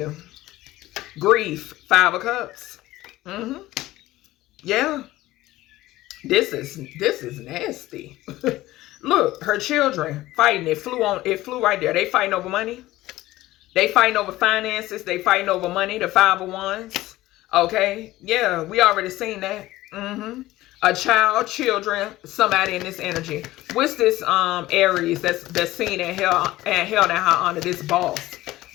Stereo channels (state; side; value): quieter; right; 16.8 dB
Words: Grief, 5 of Cups. Yeah. This is nasty. Look, her children fighting. It flew right there. They fighting over money. They fighting over finances. They fighting over money. The 5 of Wands. Okay. Yeah, we already seen that. A child, children, somebody in this energy. What's this Aries that's seen and held in high honor? This boss.